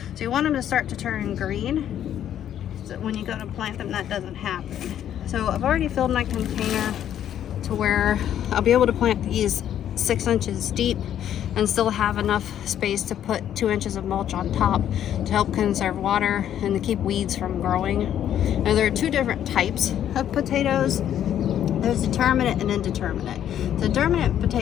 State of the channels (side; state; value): right; quieter; 10.5 dB